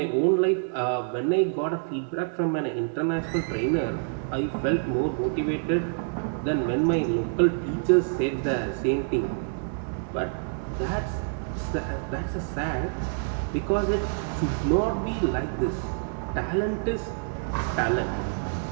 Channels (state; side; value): silent; left; 60 dB below the other